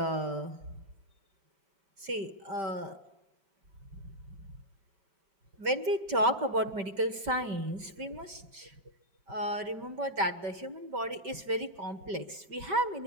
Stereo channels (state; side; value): late; left; 5.1 ms